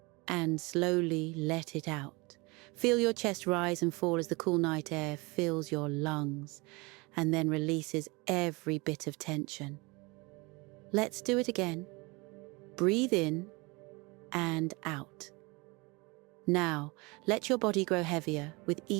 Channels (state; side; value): quieter; left; 26.2 dB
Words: and slowly let it out. Feel your chest rise and fall as the cool night air fills your lungs and then releases every bit of tension. Let's do it again. Breathe in and out. Now, let your body grow heavier with